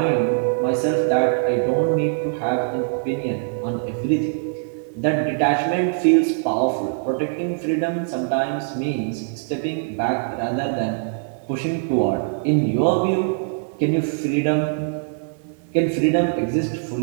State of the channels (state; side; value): silent; left; digital silence